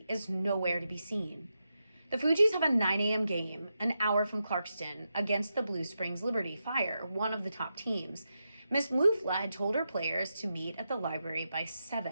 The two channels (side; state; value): both; inverted; correlation -0.87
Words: is nowhere to be seen. The Fugees have a 9 a.m. game, an hour from Clarkston, against the Blue Springs Liberty Fire, one of the top teams. Miss Mufla had told her players to meet at the library by